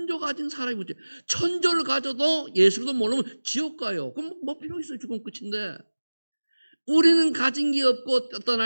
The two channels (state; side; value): inverted; both; correlation -1.00